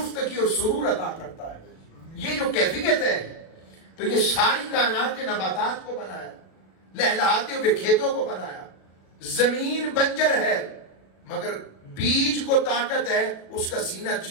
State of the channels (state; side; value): late; right; 37 ms